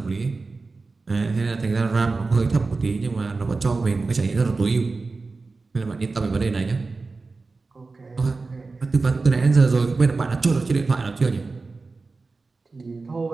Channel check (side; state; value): left; quieter; 3.9 dB